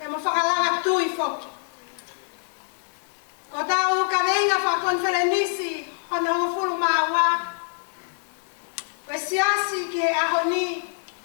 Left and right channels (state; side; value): silent; right; 62 dB below the other